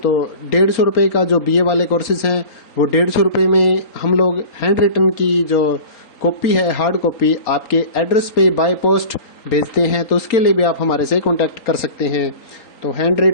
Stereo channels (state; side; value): late; right; 3.9 ms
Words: 150 रुपये का जो BA वाले कोर्सेज हैं वो 150 रुपये में हम लोग हैंड रिटन की जो कॉपी है, हार्ड कॉपी, आपके एड्रेस पे बाय पोस्ट भेजते हैं। तो उसके लिए भी आप हमारे से कांटेक्ट कर सकते हैं। तो हैंड